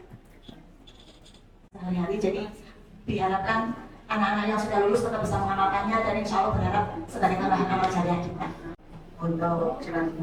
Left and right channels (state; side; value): identical; both; correlation 1.00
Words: sehari-hari, jadi diharapkan anak-anak yang sudah lulus tetap bisa mengamalkannya, dan insya Allah berharap sebagai tambahan amal jariah kita. Untuk